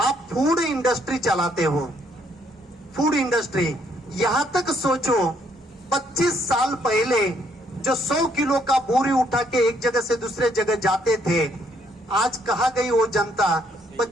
फूड इंडस्ट्री चलाते हो, फूड इंडस्ट्री, यहां तक सोचो 25 साल पहले जो 100 किलो का बोरी उठा के एक जगह से दूसरे जगह जाते थे, आज कहां गई वो जनता?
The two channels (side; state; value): both; normal; correlation 0.69